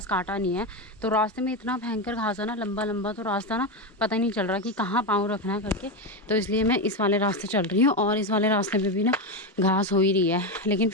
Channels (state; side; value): normal; both; correlation 0.12